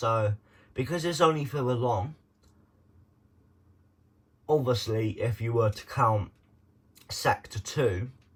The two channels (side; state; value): both; identical; correlation 1.00